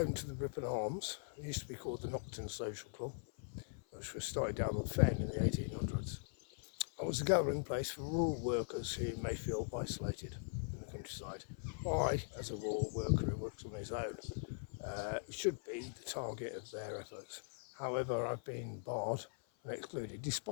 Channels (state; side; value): silent; right; 50 dB below the other